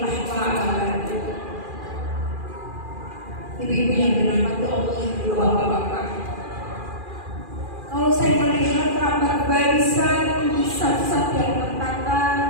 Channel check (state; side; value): late; left; 2.4 ms